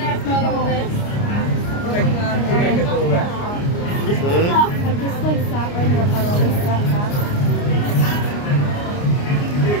have fun on this. You might get a little wet. I just like sat right in a puddle and sat back.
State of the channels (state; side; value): late; right; 29 ms